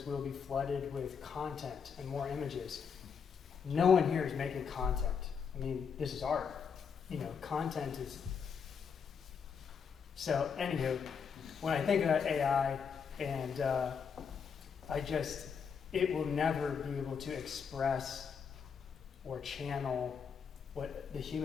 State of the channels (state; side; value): quieter; right; 6.5 dB